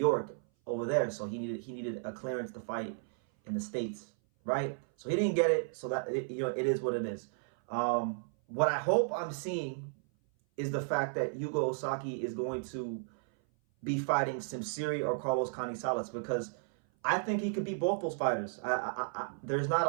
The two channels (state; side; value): silent; left; 55 dB below the other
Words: over there. So he needed a clearance to fight in the States, right? So he didn't get it. So that it is what it is. What I hope I'm seeing is the fact that Yuga Ozaki is going to be fighting Simsiri or Carlos Canizales, because I think he could beat both those fighters. There's not a